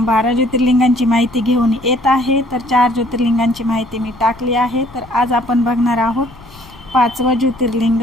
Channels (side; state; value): left; noise; rumble, 22 dB below the sound